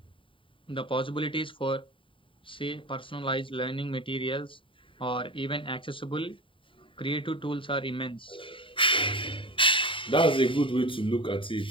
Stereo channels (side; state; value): right; late; 0.25 ms